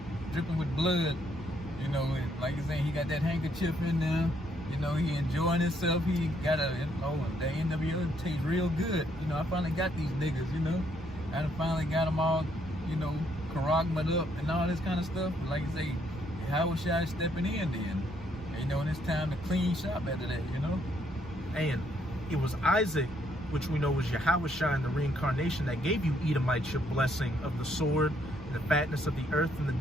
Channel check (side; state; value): both; normal; correlation 0.71